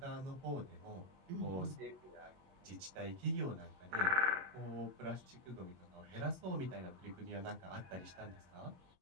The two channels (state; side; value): late; left; 22 ms